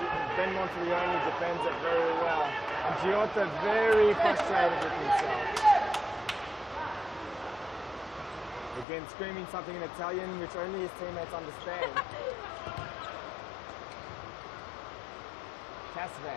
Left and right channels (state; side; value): drops out; right; at 8.8 s